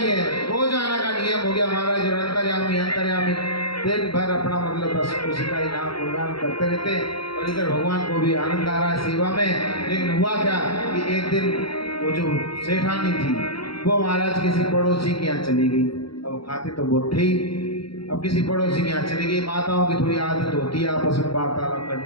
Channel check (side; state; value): right; late; 0.74 ms